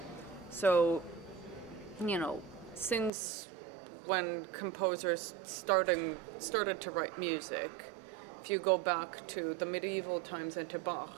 So, since when composers started to write music, if you go back to the medieval times and to Bach,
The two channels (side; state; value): left; drops out; at 3.1 s